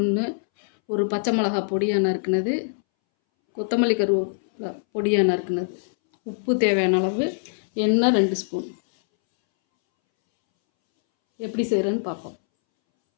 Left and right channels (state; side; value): silent; right; 63 dB below the other